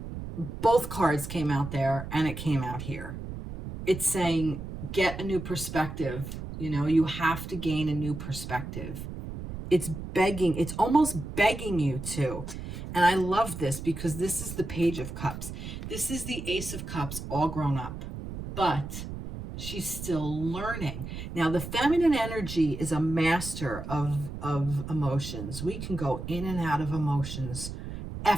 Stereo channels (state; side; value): noise; right; rumble, 8 dB below the sound